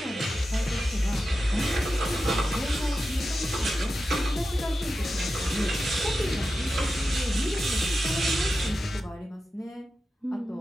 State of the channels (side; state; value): both; normal; correlation 0.91